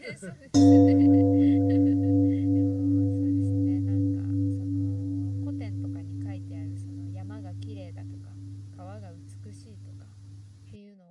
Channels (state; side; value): identical; both; correlation 1.00